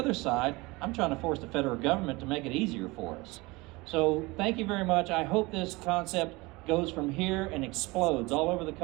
side, I'm trying to force the federal government to make it easier for us. So thank you very much. I hope this concept goes from here and explodes all over the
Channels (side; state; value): left; quieter; 23.3 dB